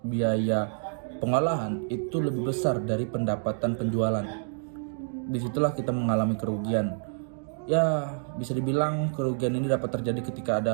biaya pengolahan itu lebih besar dari pendapatan penjualan. Disitulah kita mengalami kerugian. Ya, bisa dibilang kerugian ini dapat terjadi ketika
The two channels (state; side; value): silent; left; digital silence